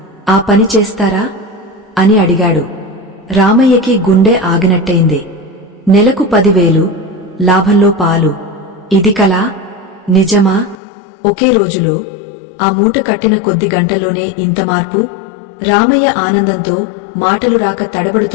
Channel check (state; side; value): drops out; right; at 10.8 s